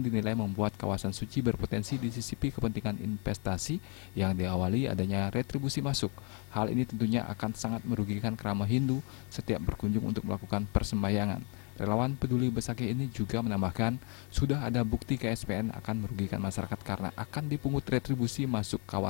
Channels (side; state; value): right; quieter; 35.5 dB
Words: membuat kawasan suci berpotensi disisipi kepentingan investasi yang diawali adanya retribusi masuk. Hal ini tentunya akan sangat merugikan Krama Hindu setiap berkunjung untuk melakukan persembahyangan. Relawan peduli Besakeh ini juga menambahkan, sudah ada bukti KSPN akan merugikan masyarakat karena akan dipungut retribusi masuk